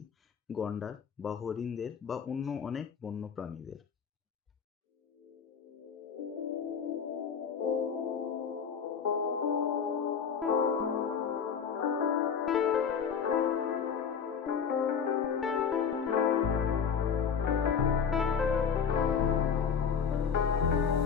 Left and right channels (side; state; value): right; quieter; 6.8 dB